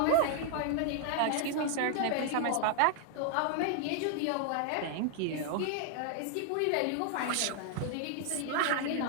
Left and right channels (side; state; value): both; different; correlation 0.00